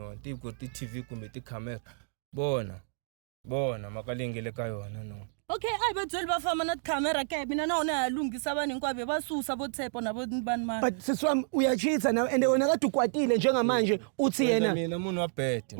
they've got the TV kumbe the camera. Bona, makalingele kayona no. Okay, I bet bafama not camera ke mina naona yalungisa abaningi kwabe basusa bo Tepo nabo bani manje. But siswami uyachitha na and wena kade ukwatile njengamanje uthi yena. Mina umuntu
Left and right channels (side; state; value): left; silent; digital silence